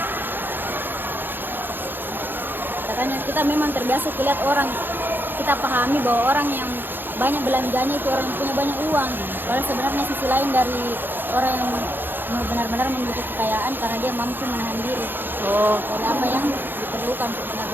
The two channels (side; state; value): left; late; 0.097 ms